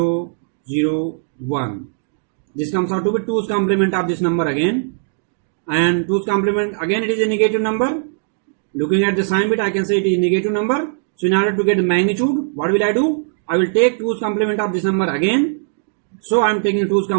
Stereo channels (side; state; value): left; silent; digital silence